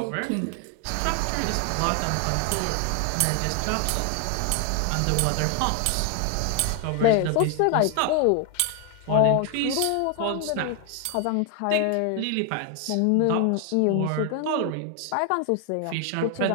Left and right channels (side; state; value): both; different; correlation 0.00